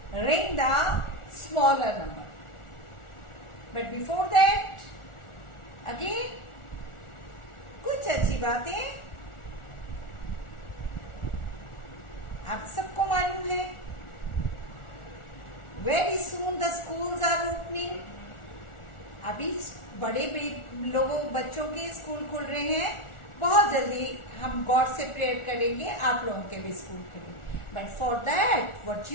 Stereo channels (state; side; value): late; right; 1.4 ms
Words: ring the smaller number. But before that, again, कुछ अच्छी बातें आप सबको मालूम है. Very soon the schools are opening. अभी बड़े लोगों बच्चों के स्कूल खुल रहे हैं. बहुत जल्दी हम गॉड से प्रेयर करेंगे आप लोगों के भी स्कूल खुले. But for that what